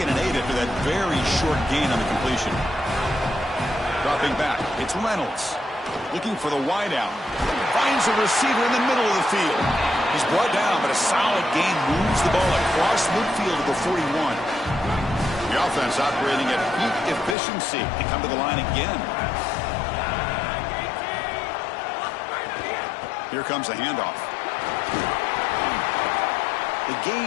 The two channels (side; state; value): right; drops out; at 17.4 s